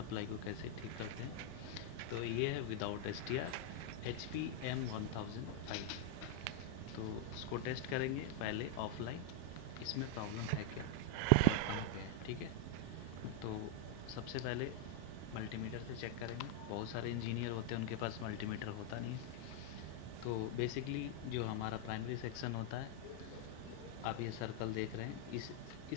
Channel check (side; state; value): both; different; correlation 0.00